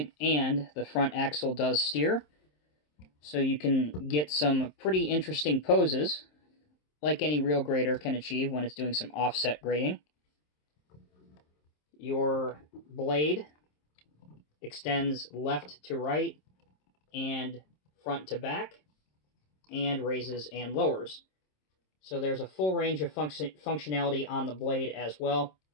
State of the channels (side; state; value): right; late; 27 ms